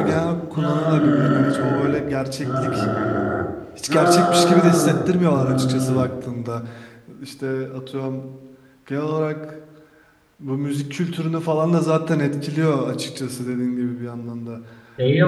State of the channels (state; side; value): identical; both; correlation 1.00